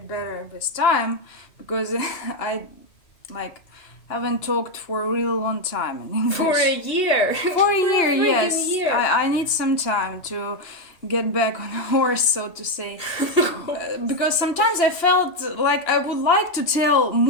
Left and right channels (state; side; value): late; right; 2.8 ms